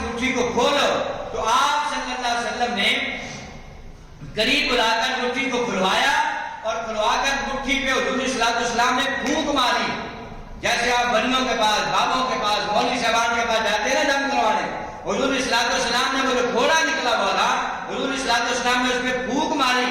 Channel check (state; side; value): identical; both; correlation 1.00